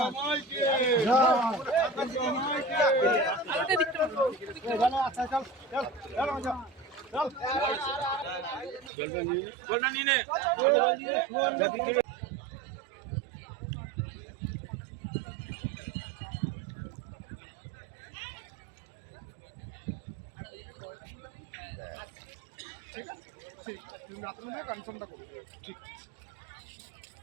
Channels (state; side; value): drops out; left; at 8.9 s